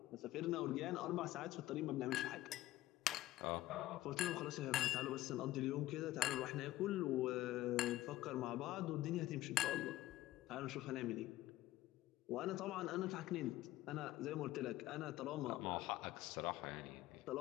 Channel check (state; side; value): quieter; right; 15.8 dB